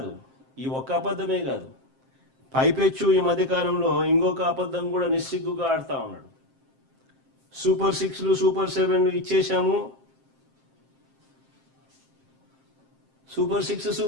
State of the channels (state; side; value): late; left; 7.6 ms